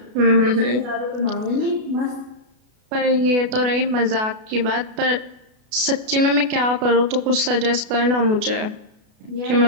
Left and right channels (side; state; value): left; late; 32 ms